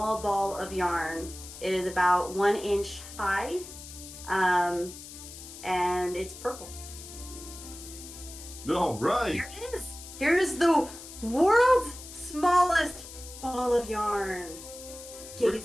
ball of yarn. It is about 1 inch high, and it's purple. All right. Here it is. Here's the world's smallest ball of yarn.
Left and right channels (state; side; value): noise; left; hiss, 14 dB below the sound